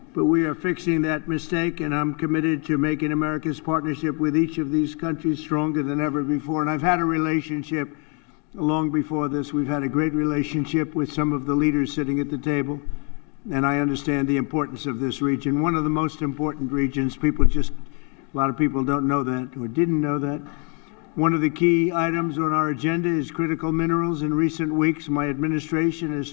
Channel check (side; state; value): right; quieter; 36.0 dB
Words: But we are fixing that mistake, and I'm committed to making America's partnership with each of these countries stronger than ever before. And I've had a relationship long before this. We've had a great relationship with some of the leaders sitting at the table, and I understand the importance of this region. One of the most important regions. A lot of people don't know that or didn't know that. One of the key items on our agenda is critical minerals. In recent weeks, my administration has